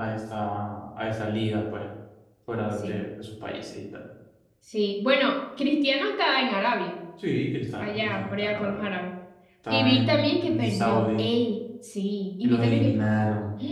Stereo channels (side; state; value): both; identical; correlation 1.00